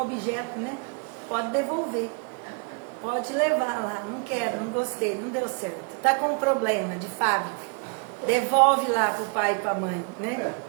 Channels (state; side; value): quieter; left; 35.3 dB